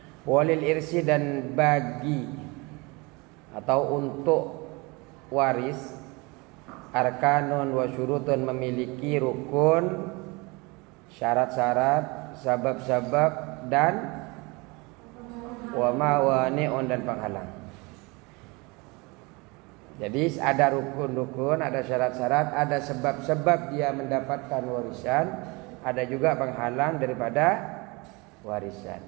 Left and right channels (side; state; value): left; quieter; 26.6 dB